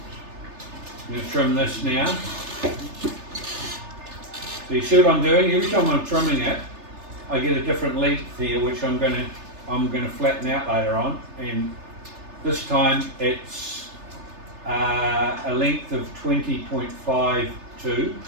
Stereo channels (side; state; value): left; late; 3.3 ms